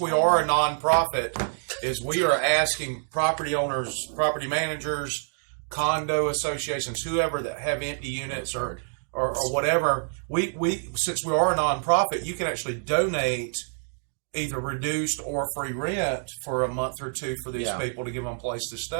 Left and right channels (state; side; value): silent; left; digital silence